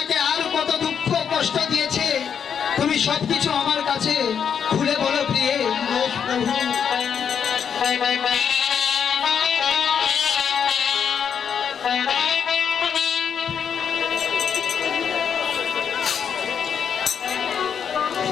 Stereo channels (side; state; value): right; quieter; 7.5 dB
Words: আর কত দুঃখ কষ্ট দিয়েছে তুমি সবকিছু আমার কাছে খুলে বলো প্রিয়ে। বেশ প্রভু।